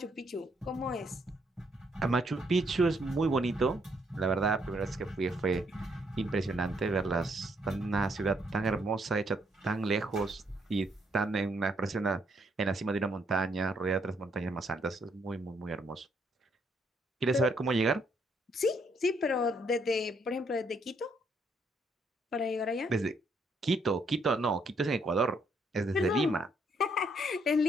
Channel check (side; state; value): both; normal; correlation 0.72